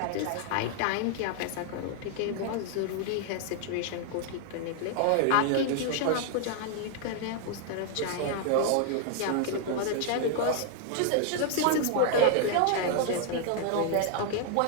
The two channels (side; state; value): both; different; correlation 0.00